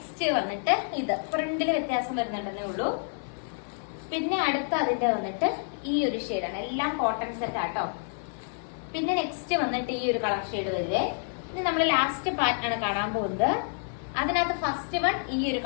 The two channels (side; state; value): right; silent; 56 dB below the other